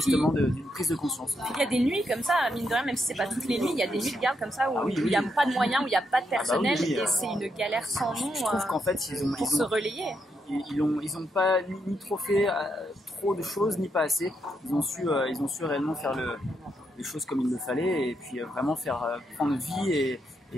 d'une prise de conscience. Il y a des nuits comme ça, mine de rien, même si c'est pas toutes les nuits, il y a des nuits de garde comme ça où il n'y a pas de moyens, où il n'y a pas de personnel, et c'est une galère sans nom. Je trouve qu'en fait, pour se relayer. Ils ont pas ni trop fait trop de choses, ni pas assez. Ils ont su réellement faire les choses comme il le fallait, et puis vraiment faire prendre vie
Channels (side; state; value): both; normal; correlation 0.80